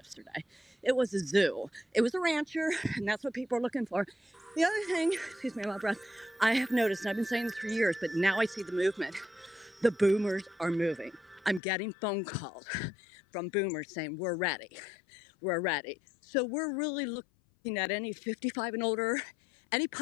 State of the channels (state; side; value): drops out; right; at 11.6 s